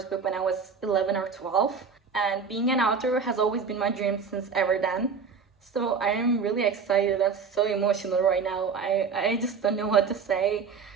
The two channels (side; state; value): left; quieter; 5.6 dB